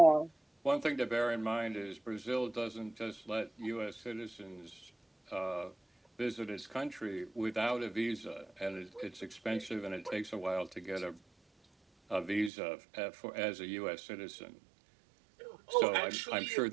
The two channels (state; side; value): drops out; left; at 12.5 s